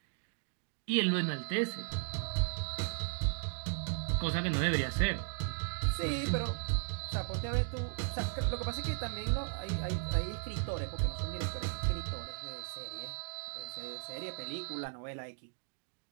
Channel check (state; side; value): silent; left; 54 dB below the other